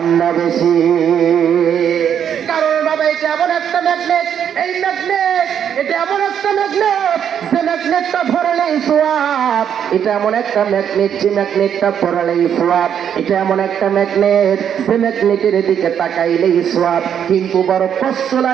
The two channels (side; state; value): left; quieter; 8.7 dB